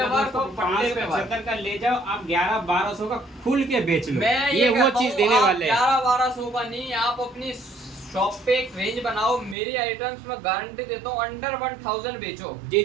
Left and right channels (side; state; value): left; drops out; at 9.6 s